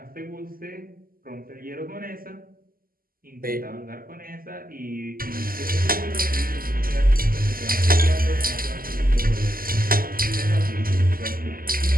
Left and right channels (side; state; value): left; late; 0.42 ms